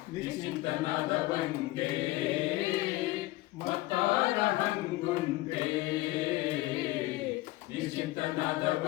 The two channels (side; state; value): right; quieter; 19.0 dB